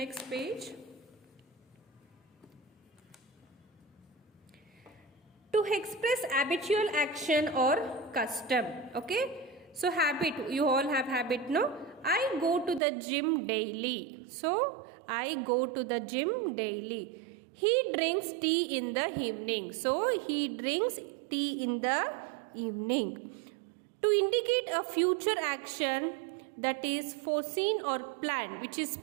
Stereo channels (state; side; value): drops out; left; at 12.8 s